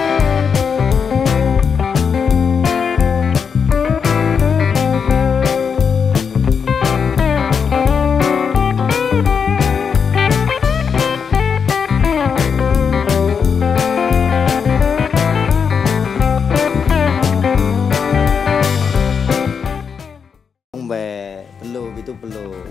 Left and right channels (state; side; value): quieter; right; 6.3 dB